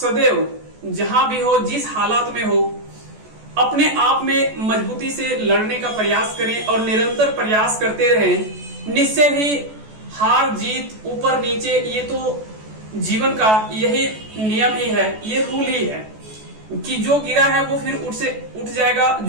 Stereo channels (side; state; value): left; late; 14 ms